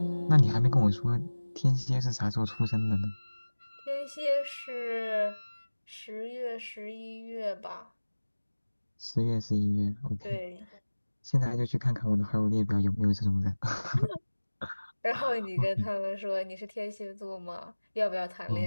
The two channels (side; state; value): both; inverted; correlation -1.00